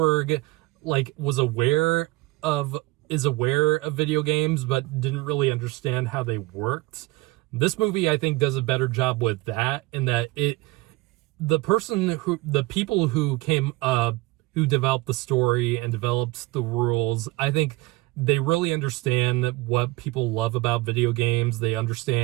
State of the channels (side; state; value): left; quieter; 21.9 dB